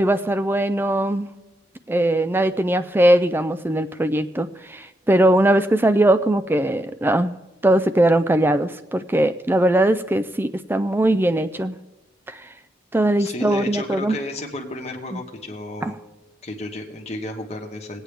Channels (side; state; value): both; normal; correlation 0.82